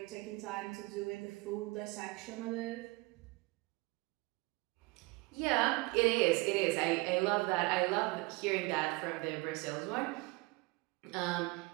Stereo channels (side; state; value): left; quieter; 24.4 dB